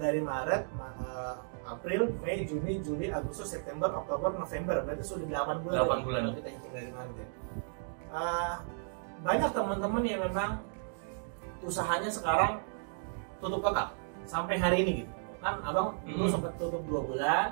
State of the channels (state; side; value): silent; left; digital silence